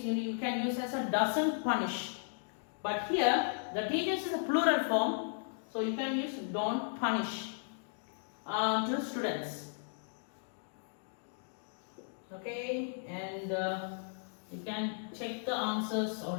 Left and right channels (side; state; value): right; silent; digital silence